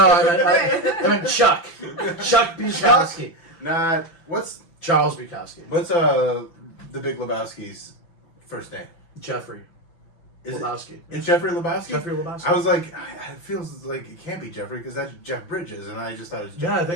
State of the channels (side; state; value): right; late; 5.9 ms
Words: I meant Chuck. Chuck Bukowski. Not what's Charles Bukowski. the Big Lebowski's first name? Jeffrey Is it- Lebowski. It's Jeffrey Lebowski. Jeffrey Lebowski. I was like, it feels like it can't be Jeffrey because that's Jeff Bridges, and I just thought it was. Yeah, I Jeffrey.